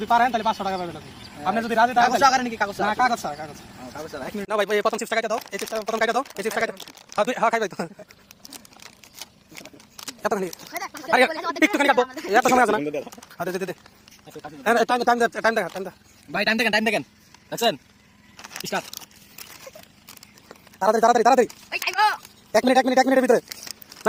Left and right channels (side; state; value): both; identical; correlation 1.00